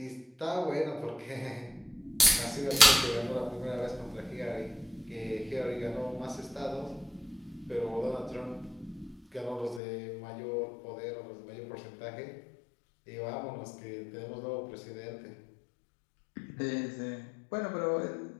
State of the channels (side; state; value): right; drops out; at 9.8 s